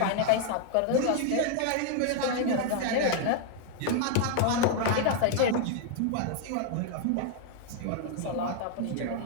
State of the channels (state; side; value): different; both; correlation 0.00